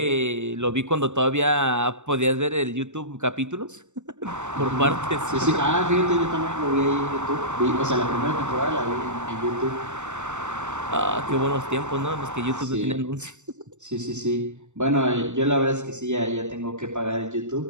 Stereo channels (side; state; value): left; late; 0.84 ms